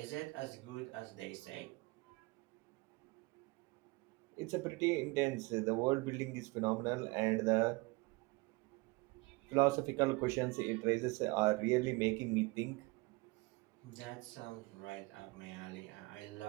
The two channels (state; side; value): quieter; left; 25.3 dB